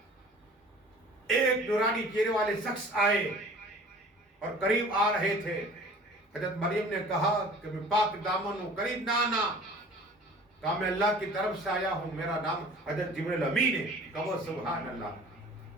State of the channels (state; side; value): normal; both; correlation 0.46